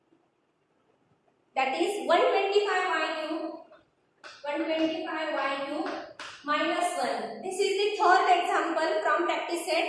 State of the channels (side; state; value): both; identical; correlation 1.00